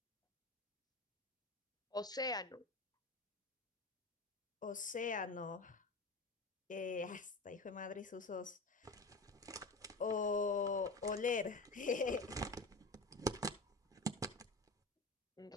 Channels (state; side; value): quieter; right; 3.1 dB